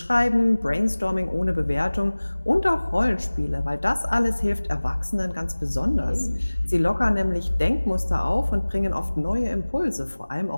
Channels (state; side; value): inverted; both; correlation -1.00